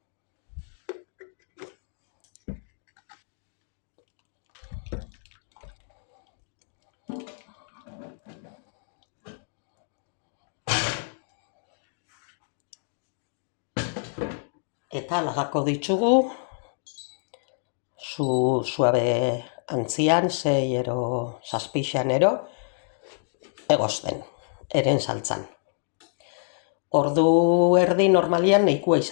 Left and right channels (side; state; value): right; silent; digital silence